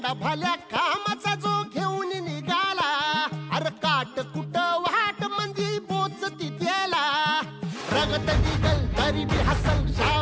भल्या कामाचा जो घेऊन निघाला, अरे काट कुट वाट म्हणजे पोचती त्याला, रगत निघल तरी बी हसल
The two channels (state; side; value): identical; both; correlation 1.00